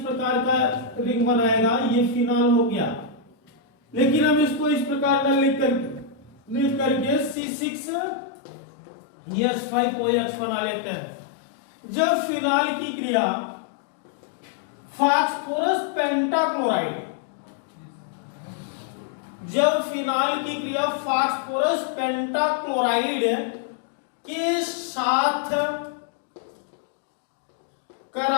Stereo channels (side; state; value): right; drops out; at 7.4 s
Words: का रिंग बनाएगा। ये फिनाल हो गया। लेकिन हम इसको इस प्रकार का लिख करके C6H5OH बना लेते हैं। जब फिनाल की क्रिया फास्फोरस पेंटाक्लोराइड, जब फिनाल की क्रिया फास्फोरस पेंटाक्लोराइड के साथ